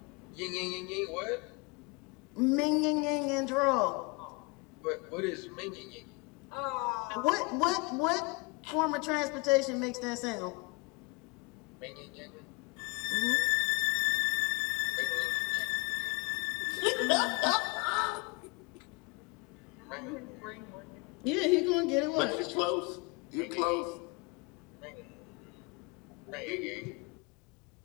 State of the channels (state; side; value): quieter; right; 28.3 dB